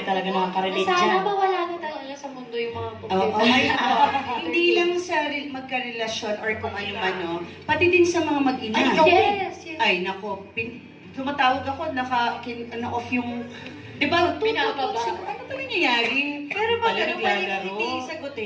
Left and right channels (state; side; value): identical; both; correlation 1.00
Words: talaga nakaka-relate Sana dyan. mawala na talaga sa mundo yung mga Oo, computer. hindi lang sa magkarelasyon or kung ano man, no? Pati din sa mga mag-ina. Ay, ikaw Yes, yes. Ay, nako. Tumatawag ako, off yung... Di ba? Pinababa. Ano ba nangyayari? Pero pag ano pa hindi